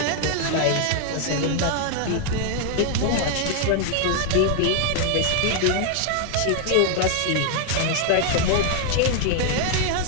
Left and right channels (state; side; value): different; both; correlation 0.00